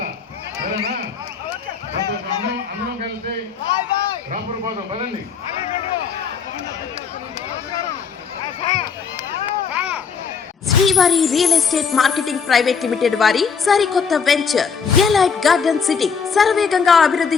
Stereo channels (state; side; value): quieter; right; 6.0 dB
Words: సరేనా? అందరం కలిసి రాపూర్ పోదాం. పదండి. శ్రీవారి real estate marketing private limited వారి సరికొత్త వెంచర్ ఎలైట్ గార్డెన్ సిటీ శరవేగంగా